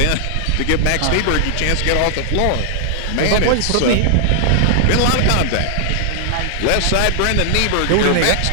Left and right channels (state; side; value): different; both; correlation 0.00